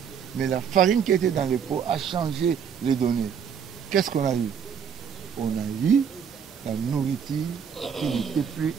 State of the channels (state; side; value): quieter; left; 7.5 dB